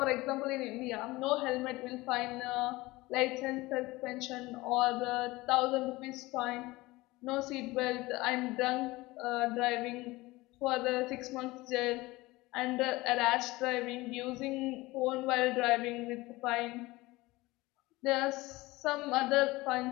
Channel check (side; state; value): right; quieter; 20.6 dB